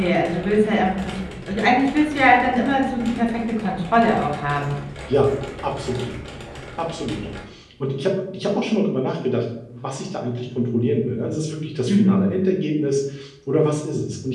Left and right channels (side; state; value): both; identical; correlation 1.00